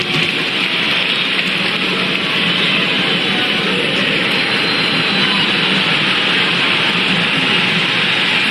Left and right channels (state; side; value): identical; both; correlation 1.00